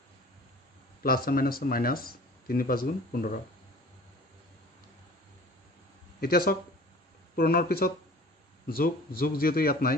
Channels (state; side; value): normal; both; correlation 0.45